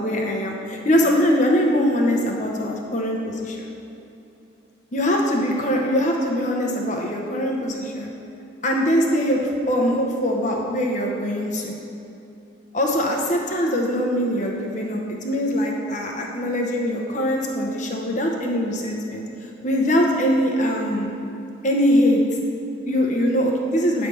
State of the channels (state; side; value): normal; both; correlation 0.52